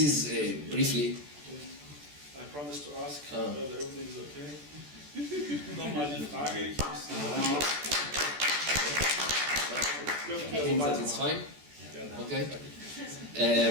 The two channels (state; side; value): late; left; 14 ms